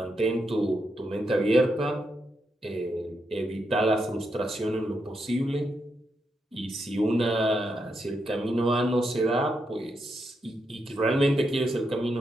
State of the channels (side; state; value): both; normal; correlation 0.82